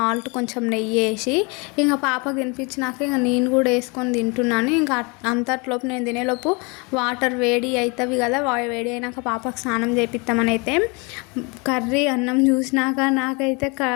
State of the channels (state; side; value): quieter; right; 29.9 dB